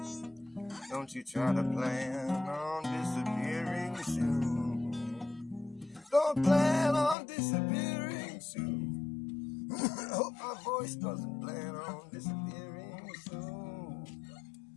Don't you try to plan on disappearing soon. Don't plan on disappearing soon. I hope my voice doesn't plan on disappearing soon.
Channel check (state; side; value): drops out; right; at 7.2 s